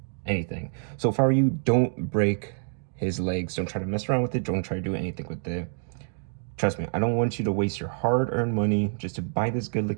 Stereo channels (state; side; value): silent; left; 59 dB below the other